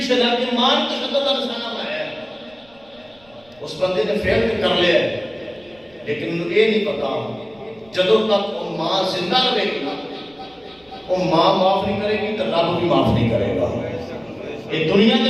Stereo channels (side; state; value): right; noise; rumble, 30 dB below the sound